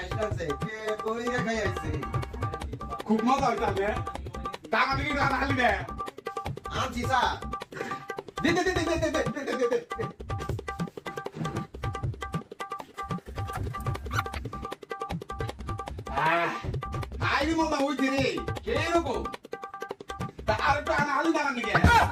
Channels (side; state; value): both; identical; correlation 1.00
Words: আছে কে কই রে খাই আইছে খুব মজা হইতাছে টাকা দিকে টাকা হালি দে আনছি সা দে দে দে দে দে দে দে দে আইনি মজা হইছে রে কে রকম আর টাকা হালি দাঁড়ান নাকি